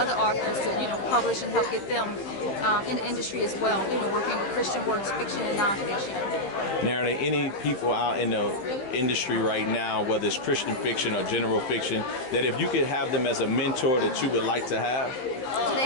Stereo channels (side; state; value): right; late; 15 ms